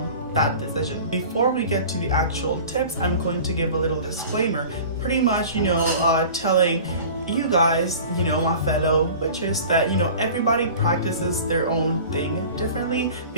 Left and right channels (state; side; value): inverted; both; correlation -0.40